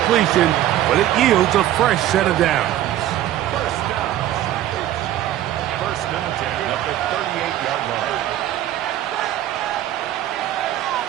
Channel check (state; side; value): quieter; left; 13.0 dB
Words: but it yields a fresh set of downs. 1st and 10 at the 38-yard line.